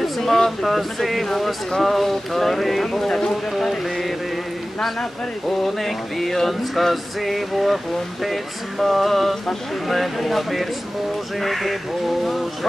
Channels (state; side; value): normal; both; correlation 0.97